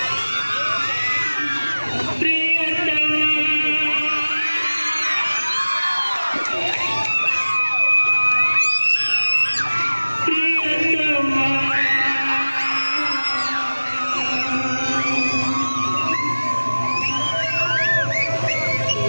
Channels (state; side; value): inverted; both; correlation -1.00